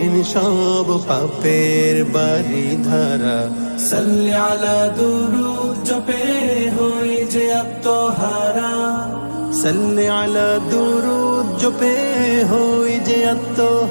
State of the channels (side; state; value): both; inverted; correlation -1.00